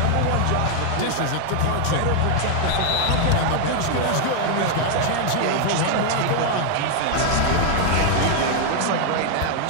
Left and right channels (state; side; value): different; both; correlation 0.00